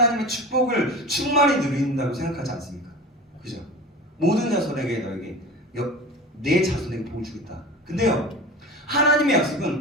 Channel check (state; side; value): normal; both; correlation 0.34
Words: 축복을 충만히 누린다고 생각하지 않습니까? 그죠? 모든 자손에게 너에게 내 자손에게 복을 주겠다. 근데요, 하나님의 약속은